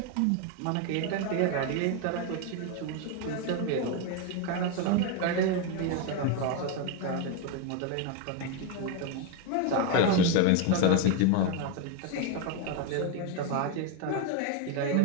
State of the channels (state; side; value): different; both; correlation 0.02